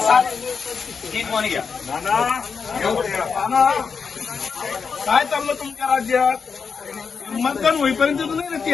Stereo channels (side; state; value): right; quieter; 5.7 dB